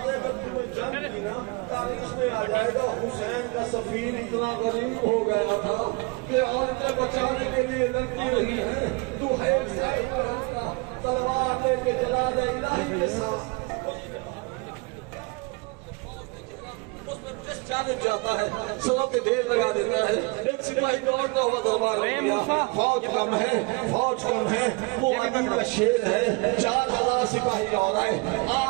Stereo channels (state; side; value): quieter; left; 28.0 dB